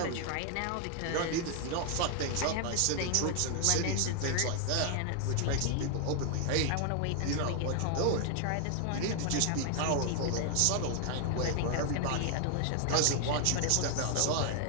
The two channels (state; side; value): different; both; correlation 0.00